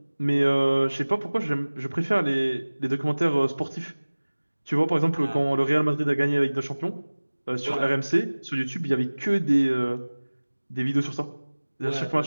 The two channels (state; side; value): inverted; both; correlation -1.00